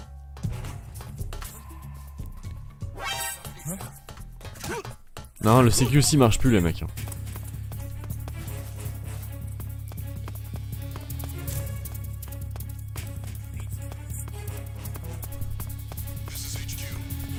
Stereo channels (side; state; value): both; identical; correlation 1.00